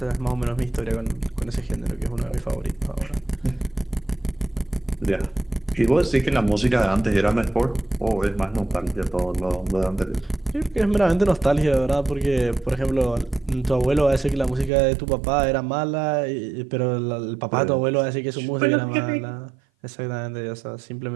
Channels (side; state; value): left; drops out; at 14.7 s